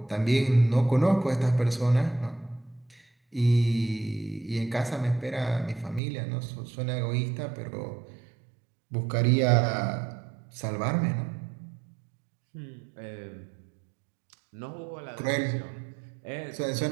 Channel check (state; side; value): drops out; left; at 6.0 s